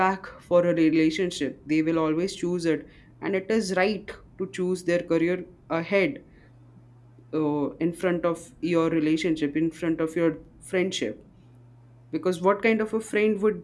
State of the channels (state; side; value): identical; both; correlation 1.00